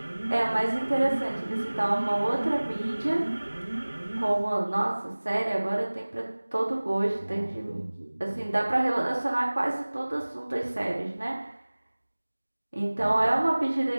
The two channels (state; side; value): inverted; both; correlation -1.00